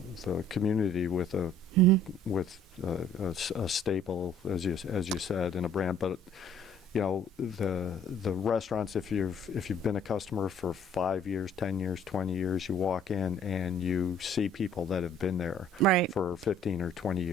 community with a staple, as you said, in a brand, but the restaurants, if you've been a customer for 5 years, 10 years, 20 years, you walk in and you see people that have been there for 15 or 20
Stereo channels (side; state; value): both; normal; correlation 0.57